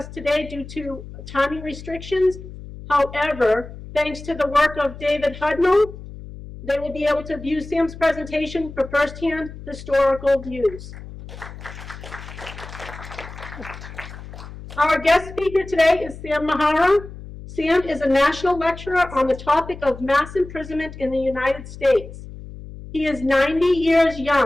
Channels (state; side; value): noise; left; hum, 14 dB below the sound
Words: today due to timing restrictions. However, thanks to the work of David Hudnall, they will be able to view Sam's presentation for firsthand historical views. Our guest speaker today is Sam Mihara. Sam is a national lecturer on the topic of mass imprisonment in the United States. He is 90 years